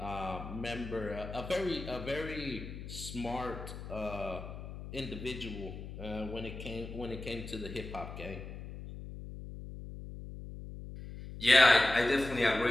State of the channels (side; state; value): left; noise; hum, 10 dB below the sound